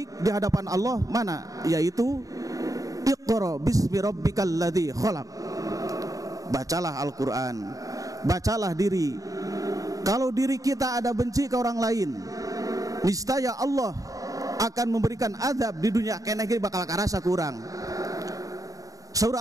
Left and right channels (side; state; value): left; late; 0.17 ms